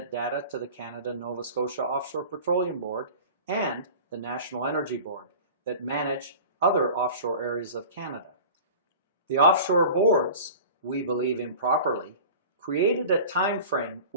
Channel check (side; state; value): both; inverted; correlation -0.39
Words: data to the Canada-Nova Scotia Offshore Petroleum Board and the National Energy Board that manage other offshore areas of Canada. The offshore boards, we believe improperly, created a time frame